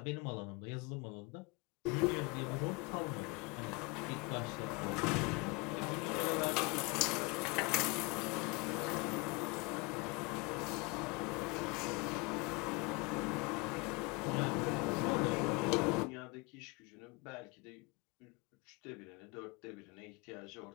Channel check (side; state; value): right; quieter; 27.8 dB